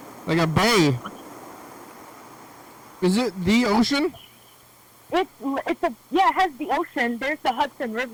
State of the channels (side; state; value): both; identical; correlation 1.00